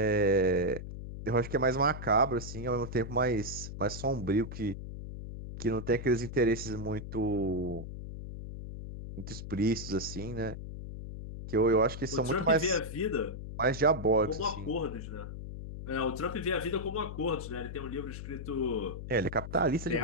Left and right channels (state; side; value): noise; left; hum, 9 dB below the sound